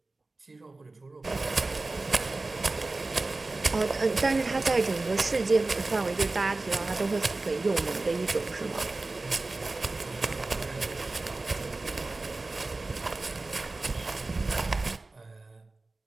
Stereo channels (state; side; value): quieter; left; 3.3 dB